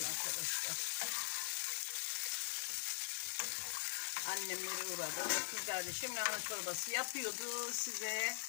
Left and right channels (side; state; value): right; silent; digital silence